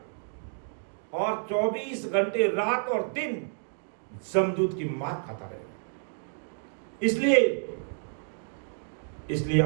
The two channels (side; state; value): left; silent; digital silence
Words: और 24 घंटे रात और दिन जमदूत की मार खाता रहेगा। इसलिए